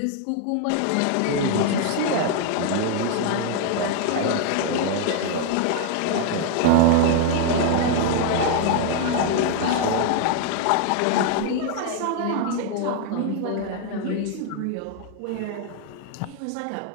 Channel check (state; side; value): different; both; correlation 0.00